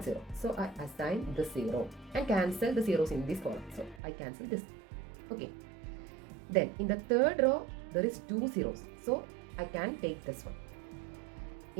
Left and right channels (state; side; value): drops out; left; at 4.0 s